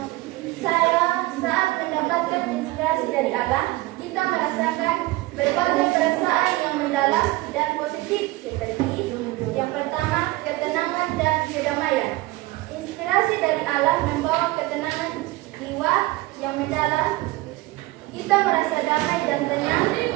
saya saat mendapatkan inspirasi dari Allah, kita merasakan berbagai perasaan yang mendalam dan positif seperti yang pertama, ketenangan dan kedamaian. Inspirasi dari Allah membawa ketenangan jiwa yang mendalam. Kita merasa damai dan tenang,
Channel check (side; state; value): left; quieter; 19.6 dB